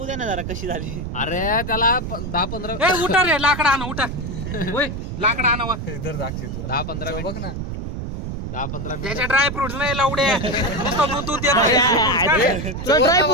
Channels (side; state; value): right; noise; rumble, 6 dB below the sound